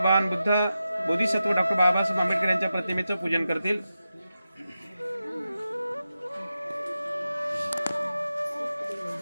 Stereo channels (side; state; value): both; inverted; correlation -0.91